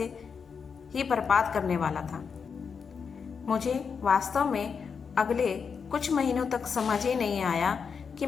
ही बर्बाद करने वाला था। मुझे वास्तव में अगले कुछ महीनों तक समझ ही नहीं आया कि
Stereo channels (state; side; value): quieter; right; 6.0 dB